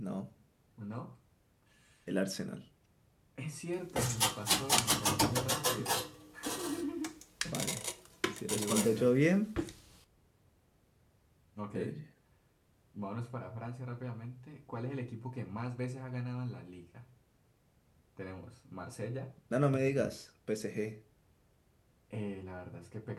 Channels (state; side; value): identical; both; correlation 1.00